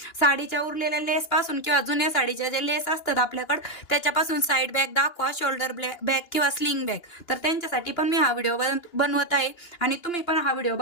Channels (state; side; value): late; right; 2.8 ms